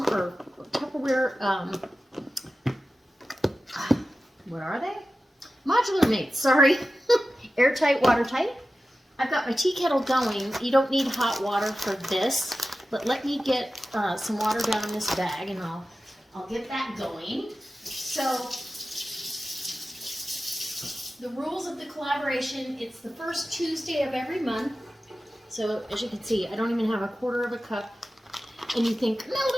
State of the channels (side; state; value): both; normal; correlation 0.94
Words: what are they? Modular mates, sorry. Airtight, watertight. I've got my tea kettle going. You don't need hot water for this. But let me get some water down in this bag, and I'll get that going. So the rules of the collaboration, it's the first Tuesday of every month. So as you can see, I don't even have 1/4 cup. And you think, no,